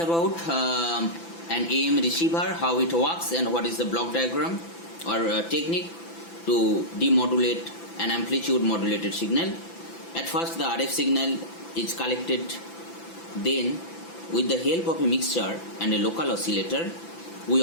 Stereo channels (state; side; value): late; right; 5.9 ms